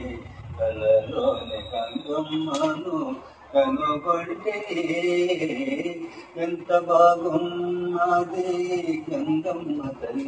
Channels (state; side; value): identical; both; correlation 1.00